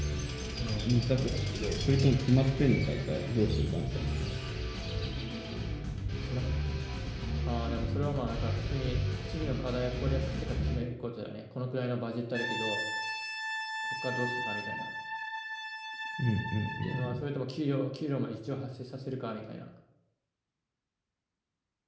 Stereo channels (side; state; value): both; identical; correlation 1.00